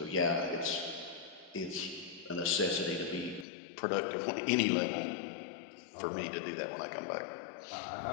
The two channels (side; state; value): right; drops out; at 3.5 s